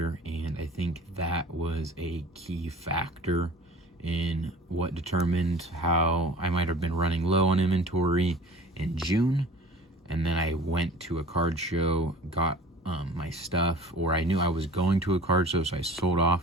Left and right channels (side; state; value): both; normal; correlation 0.44